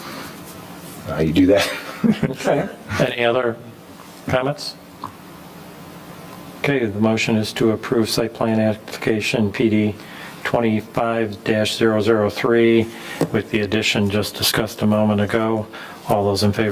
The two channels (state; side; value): identical; both; correlation 1.00